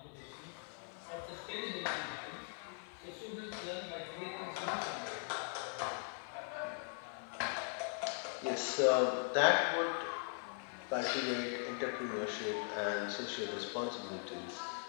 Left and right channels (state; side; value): silent; right; 51 dB below the other